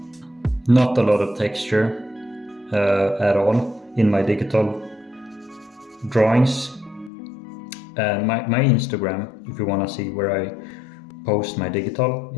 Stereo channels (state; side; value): drops out; right; at 7.1 s